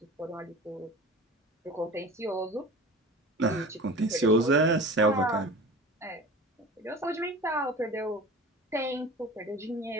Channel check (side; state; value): both; normal; correlation 0.38